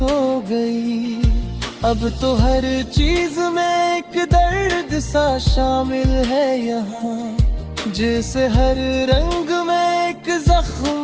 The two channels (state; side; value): identical; both; correlation 1.00